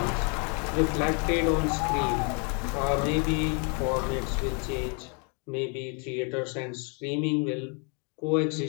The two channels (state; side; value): quieter; right; 36.7 dB